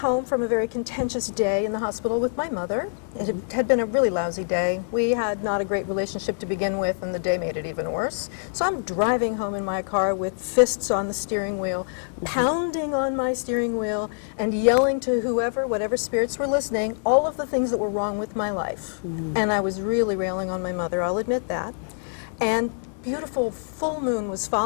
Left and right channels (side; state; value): right; silent; 62 dB below the other